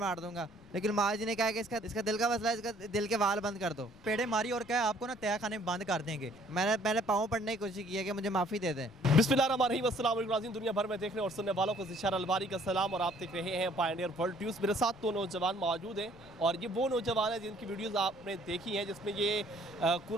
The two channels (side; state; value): left; noise; rumble, 25 dB below the sound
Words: दूंगा। लेकिन माँ जी ने कहा कि इसका दिल का मसला है, इसका दिल के वाल बंद कर दो। पेड़े मारी और क्या है, आपको ना तय खाने में बंद कर देंगे। मैंने पाँव पड़ने की कोशिश की है कि मुझे माफ़ी दे दें। बिस्मिल्लाहिर्रहमानिर्रहीम, अस्सलाम वालेकुम। दुनिया भर में देखने और सुनने वालों को ज़िशार अलबारी का सलाम और आप देख रहे हैं पायनियर वर्ल्ड न्यूज़। मेरे साथ दो नौजवान मौजूद हैं और ये वो नौजवान हैं जिनकी वीडियोस आपने देखी हैं, जिसमें ये